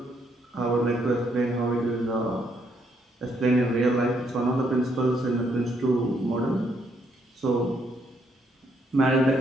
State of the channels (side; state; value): both; normal; correlation 0.73